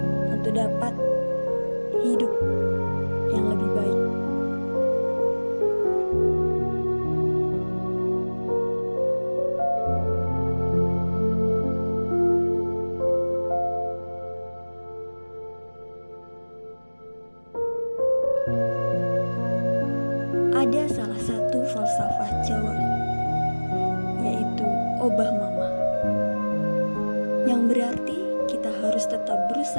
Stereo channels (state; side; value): inverted; both; correlation -1.00